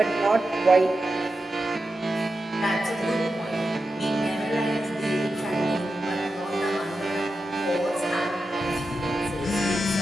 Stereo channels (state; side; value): normal; both; correlation 0.90